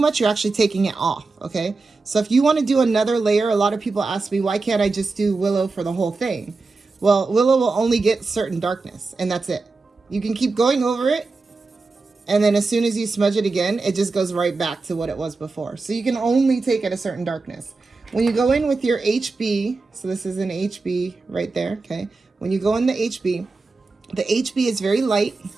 you're actually taking it off, okay? So if you want to do another layer, a lot of people ask me, why can't I just do willow for the whole thing? Well, willow will only get certain darkness, and that's it. You can keep going over it, and then as soon as you smudge it again, it just goes right back to what it was before. So you can only take it a certain darkness. When you go in with your HB, so this is an HB right there, okay? When you go in the HB is very light,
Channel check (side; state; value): left; quieter; 3.8 dB